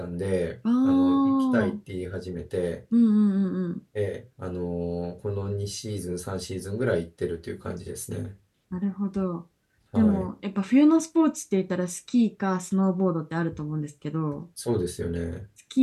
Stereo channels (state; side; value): identical; both; correlation 1.00